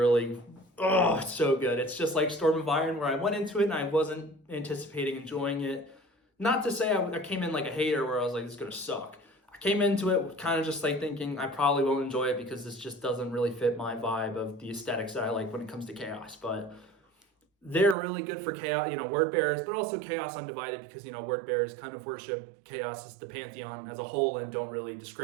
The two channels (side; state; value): left; drops out; at 17.9 s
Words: oh, it's so good. It's just like Storm of Iron, where I went into it and I wasn't anticipating enjoying it. Not to say I came in like a hater where I was like, this is going to suck. I came into it kind of just like thinking I probably won't enjoy it because this just doesn't really fit my vibe of the aesthetics that I like when it comes to Chaos. But they're really good for Chaos, word bearers, but also Chaos Undivided, because, word bearers kind of worship Chaos as the pantheon as a whole and don't really